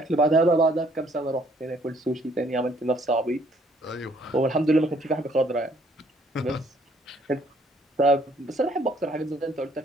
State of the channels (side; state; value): both; normal; correlation 0.64